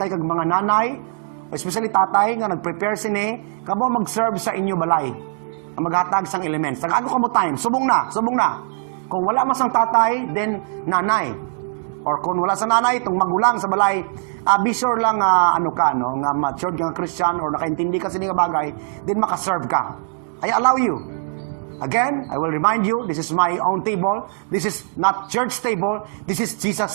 kag mga nanay, especially tatay nga nag-prepare sini, kamo mag-serve sa inyo balay. Ang maghatag sang elements. Tag ako kamo time, subong na. Kung wala man sang tatay, then nanay. Or kung wala sa nanay, itong magulang sa balay, be sure lang nga matured nga Christian or nakaintindi ka sa nga bagay, then makaserve ka. I allow you. Again, I will remind you, this is my own table. This is not church table. This is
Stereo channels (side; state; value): left; silent; 65 dB below the other